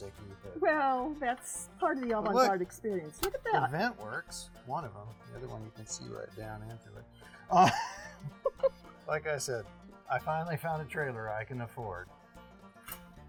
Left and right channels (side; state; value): both; identical; correlation 1.00